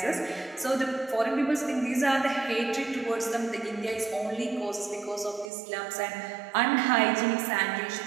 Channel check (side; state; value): left; drops out; at 5.5 s